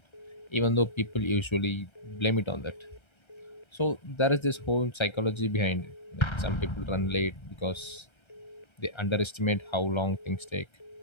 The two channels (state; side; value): late; right; 1.3 ms